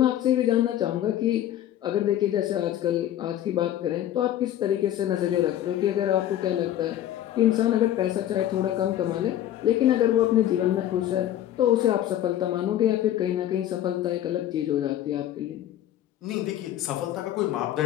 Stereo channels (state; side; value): quieter; right; 12.2 dB